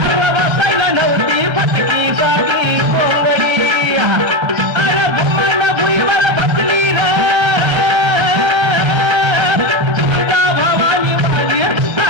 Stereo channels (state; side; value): late; left; 1.3 ms